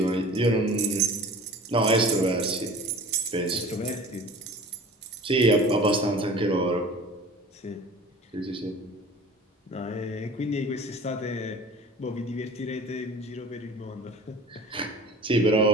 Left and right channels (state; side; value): normal; both; correlation 0.42